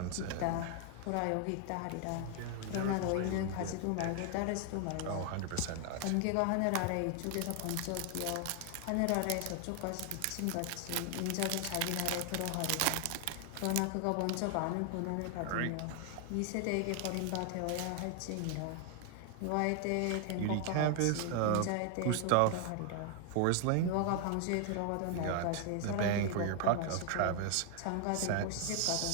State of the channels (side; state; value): both; different; correlation 0.00